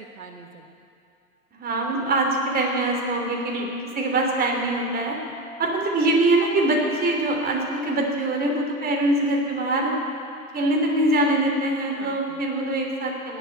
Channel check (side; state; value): both; normal; correlation 0.21